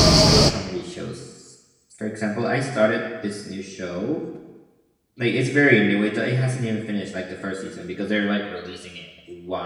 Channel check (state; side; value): identical; both; correlation 1.00